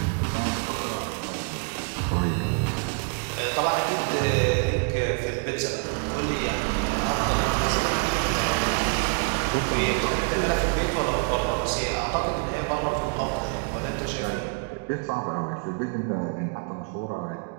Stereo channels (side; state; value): left; quieter; 38.9 dB